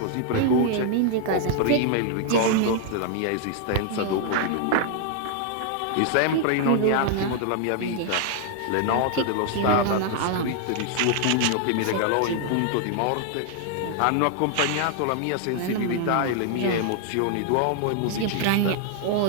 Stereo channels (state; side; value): different; both; correlation 0.00